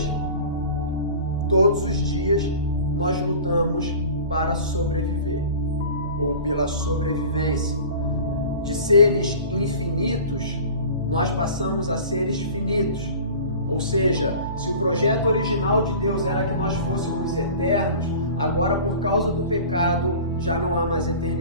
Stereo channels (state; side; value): inverted; both; correlation -0.40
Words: nós lutamos para sobreviver, ou pela sobrevivência. De seres infinitos, nós passamos a seres finitos. Ou seja, se o projeto original de Deus era que nós fôssemos eternos, agora por causa do pecado já não há mais